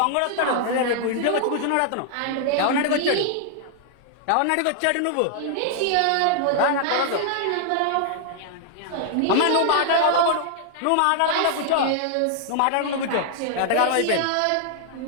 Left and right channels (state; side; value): different; both; correlation -0.01